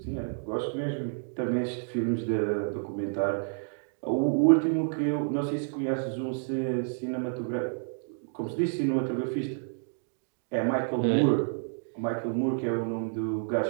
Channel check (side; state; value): left; silent; digital silence